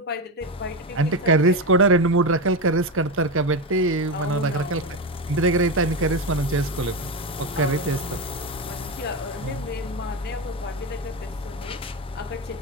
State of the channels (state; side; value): normal; both; correlation 0.15